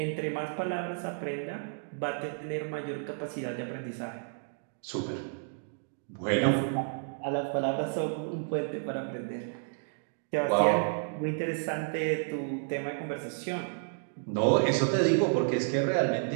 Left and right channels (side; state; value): left; silent; digital silence